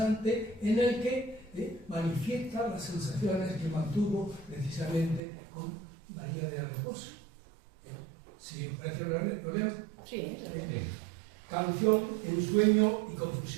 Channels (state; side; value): drops out; left; at 5.2 s